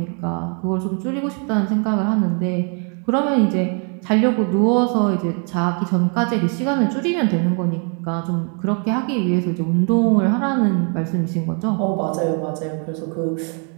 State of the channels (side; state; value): left; quieter; 39.9 dB